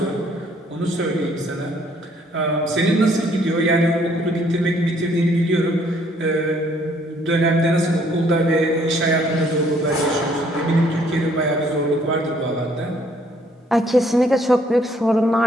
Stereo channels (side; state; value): both; normal; correlation 0.64